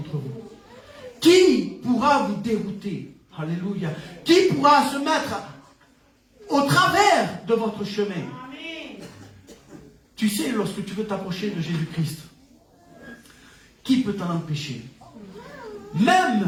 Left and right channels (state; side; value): identical; both; correlation 1.00